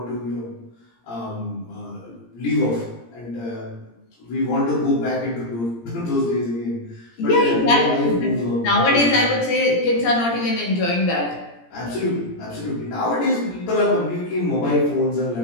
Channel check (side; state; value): right; late; 17 ms